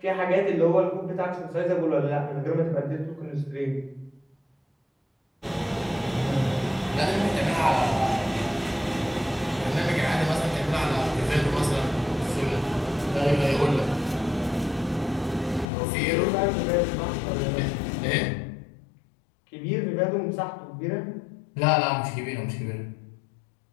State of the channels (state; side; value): drops out; right; at 15.7 s